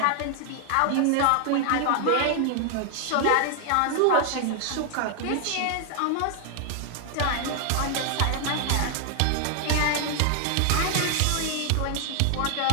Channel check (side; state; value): both; different; correlation 0.00